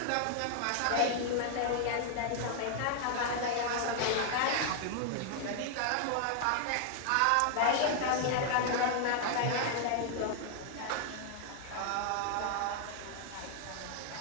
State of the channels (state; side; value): different; both; correlation 0.00